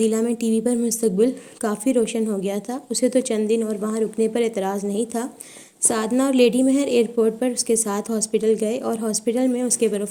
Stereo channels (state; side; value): identical; both; correlation 1.00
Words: میں ٹی وی پر مستقبل کافی روشن ہو گیا تھا، اسے تو چند دن اور وہاں رکنے پر اعتراض نہیں تھا۔ سادنا اور لیڈی مہر ایئرپورٹ پر اس کے ساتھ ہاسپٹل گئے اور ہاسپٹل میں اس کے